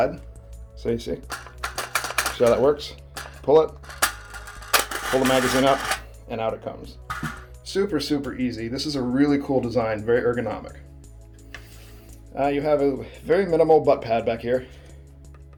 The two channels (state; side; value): identical; both; correlation 1.00